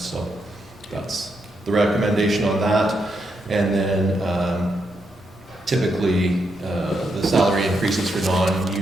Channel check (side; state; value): both; normal; correlation 0.81